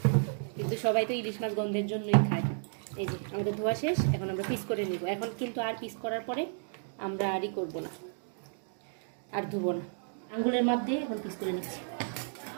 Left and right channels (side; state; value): left; silent; digital silence